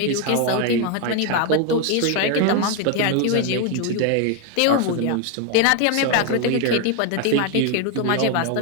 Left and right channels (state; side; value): different; both; correlation 0.01